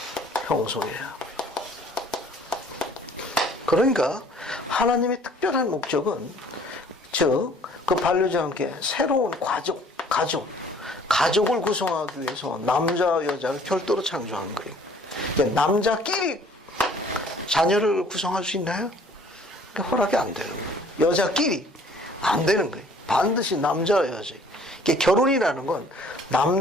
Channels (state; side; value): normal; both; correlation 0.56